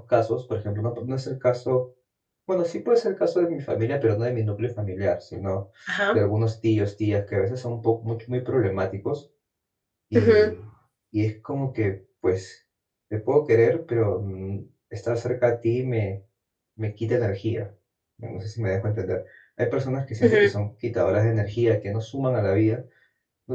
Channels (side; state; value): both; identical; correlation 1.00